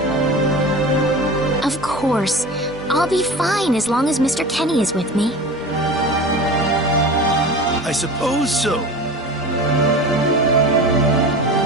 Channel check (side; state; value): both; normal; correlation 0.34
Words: Of course. I'll be fine as long as Mr. Kenny is with me. I suppose so.